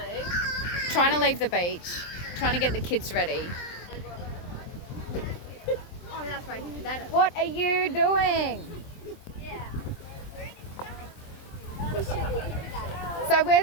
Trying to leave the beach, trying to get the kids ready. Oh, that's right. What are you doing? So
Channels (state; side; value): late; right; 23 ms